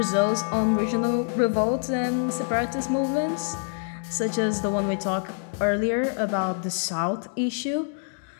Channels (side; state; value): right; silent; 61 dB below the other